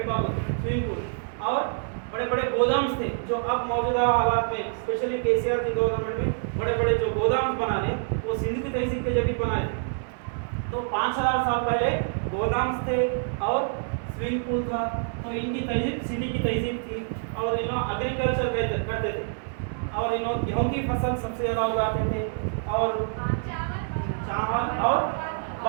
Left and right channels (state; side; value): silent; left; 60 dB below the other